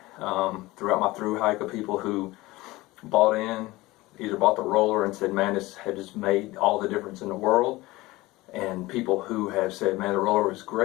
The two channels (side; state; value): right; quieter; 19.8 dB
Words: throughout my Thru hike of people who bought in, either bought the roller and said, man, this has just made all the difference in the world. And people who have said, man, the roller was